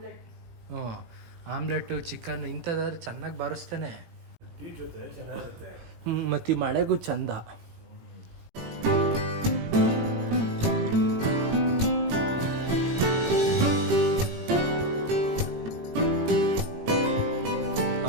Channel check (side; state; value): left; late; 18 ms